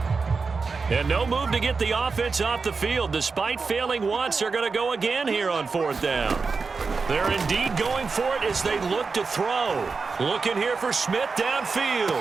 And no move to get the offense off the field. Despite failing once, they're going to go again here on 4th down. They're indeed going for it as they look to throw. Looking here for Smith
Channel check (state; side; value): quieter; left; 4.6 dB